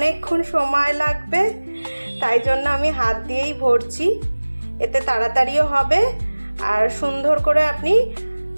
সময় লাগবে, তাই জন্য আমি হাত দিয়েই ভরছি, এতে তাড়াতাড়িও হবে আর সুন্দর করে আপনি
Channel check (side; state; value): both; inverted; correlation -1.00